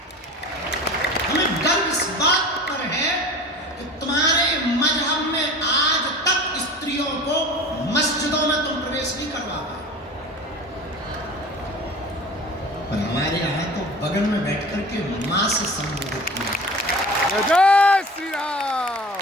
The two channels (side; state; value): both; normal; correlation 0.38